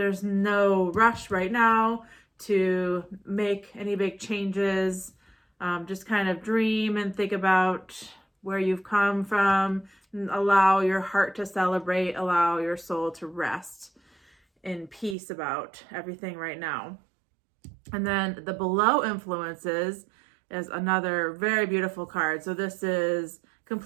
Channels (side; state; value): left; drops out; at 15.2 s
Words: no rush right now to make any big changes. Just kind of dream and think about where you've come from, and allow your heart to celebrate, allow your soul to rest in peace about everything right now. And then the below influences is another very beautiful card. So this is